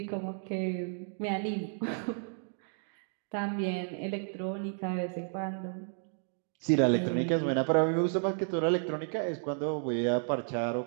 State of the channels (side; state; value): left; silent; 56 dB below the other